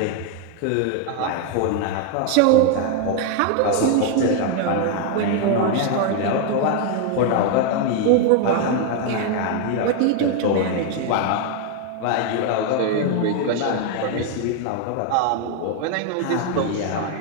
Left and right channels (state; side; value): different; both; correlation 0.01